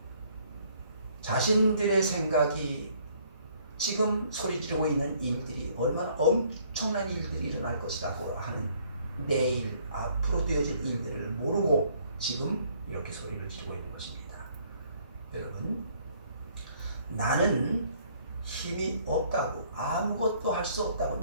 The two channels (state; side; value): inverted; both; correlation -0.62